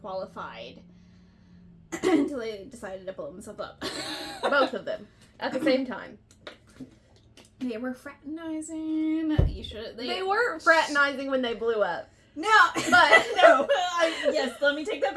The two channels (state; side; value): identical; both; correlation 1.00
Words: until they decided to blow themselves up. Both of them. At the same time. They were fraternizing. They were fraternizing when they blew up. No, but no. Yes, let me take that